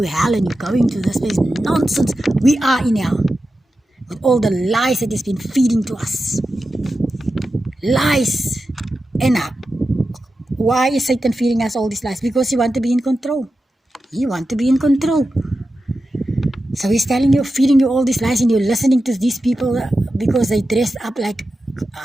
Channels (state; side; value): normal; both; correlation 0.92